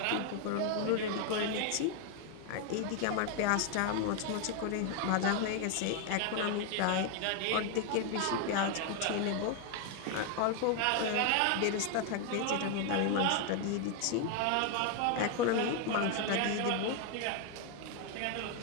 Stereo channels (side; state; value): both; different; correlation 0.01